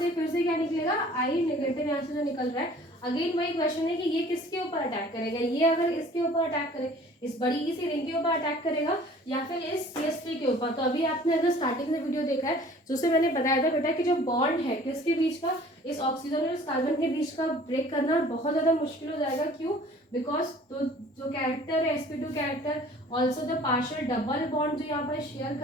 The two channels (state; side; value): normal; both; correlation 0.50